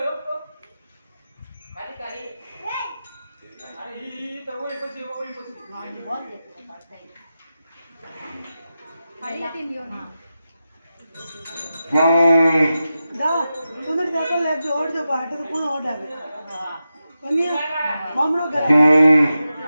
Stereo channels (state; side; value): inverted; both; correlation -0.91